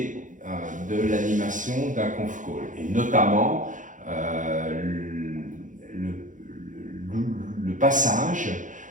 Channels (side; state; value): left; late; 0.37 ms